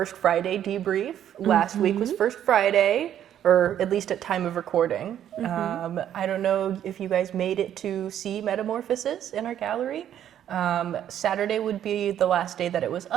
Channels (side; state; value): left; quieter; 10.5 dB